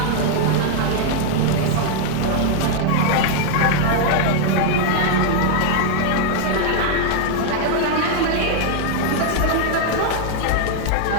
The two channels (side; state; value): both; different; correlation 0.00